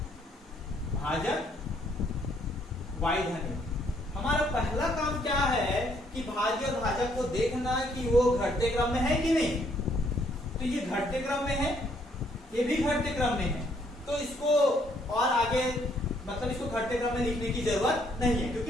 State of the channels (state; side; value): normal; both; correlation 0.68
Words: भाजक y धन 1। हमारा पहला काम क्या है कि भाज्य और भाजक को देखना कि वो घटते क्रम में है कि नहीं। तो ये घटते क्रम में है, ये भी घटते क्रम में है, तो इसको और आगे मतलब इसको घटते क्रम में लिखने की जरूरत नहीं है, क्योंकि